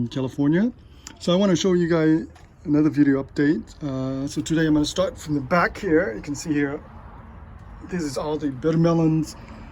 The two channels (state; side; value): identical; both; correlation 1.00